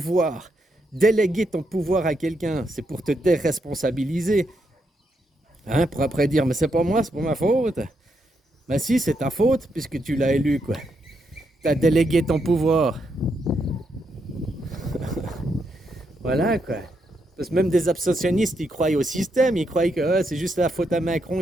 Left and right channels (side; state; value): both; normal; correlation 0.80